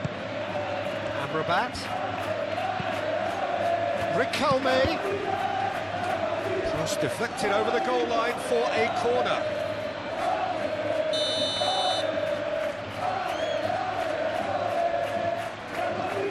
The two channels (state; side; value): identical; both; correlation 1.00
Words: Amrabat. Riquelme. Cross deflected over the goal line for a corner.